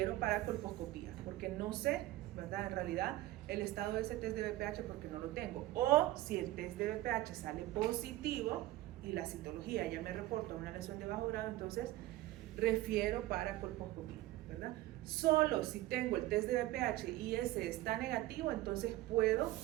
para colposcopía, porque no sé, ¿verdad? En realidad el estado de ese test de BPH porque no lo tengo. O si el test de BPH sale positivo y la citología ya me reporta una lesión de bajo grado, entonces refiero para colposcopía, ¿verdad? Solo si tengo el test de BPH y ese está negativo, entonces puedo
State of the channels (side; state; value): left; quieter; 16.7 dB